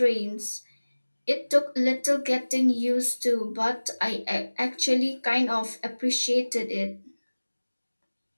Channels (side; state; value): both; inverted; correlation -1.00